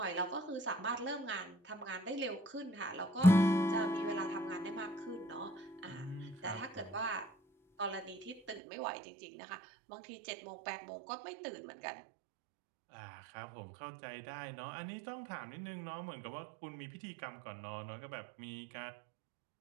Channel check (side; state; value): left; drops out; at 8.6 s